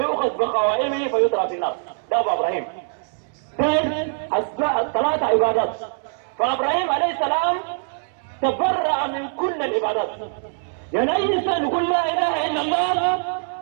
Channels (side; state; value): left; silent; 64 dB below the other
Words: بقوائمه فيطرح في النار. ده أبو إبراهيم. الثلاثة عبادات. فإبراهيم عليه السلام تبرأ من كل العبادات. يعني أي إنسان يقول لا إله إلا الله